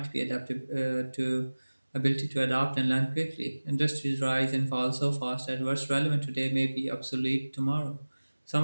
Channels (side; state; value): both; inverted; correlation -1.00